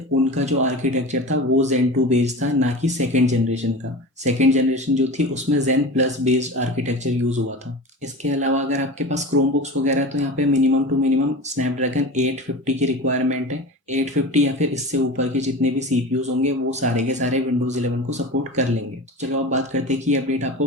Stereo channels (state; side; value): normal; both; correlation 0.31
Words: उनका जो आर्किटेक्चर था वो Zen 2 बेस्ड था, ना कि 2nd जनरेशन का। 2nd जनरेशन जो थी उसमें Zen plus based architecture use हुआ था। इसके अलावा अगर आपके पास क्रोमबुक्स वगैरह तो यहाँ पे मिनिमम टू मिनिमम स्नैपड्रैगन 850 की रिक्वायरमेंट है। 850 या फिर इससे ऊपर के जितने भी सीपीयूज होंगे वो सारे के सारे विंडोज़ 11 को सपोर्ट कर लेंगे। चलो अब बात करते हैं कि ये अपडेट